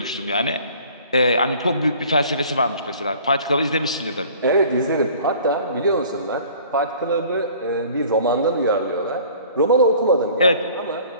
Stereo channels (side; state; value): both; inverted; correlation -0.50